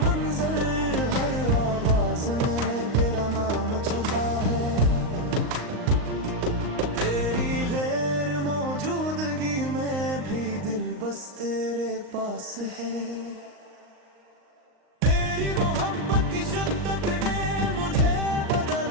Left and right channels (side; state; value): left; late; 38 ms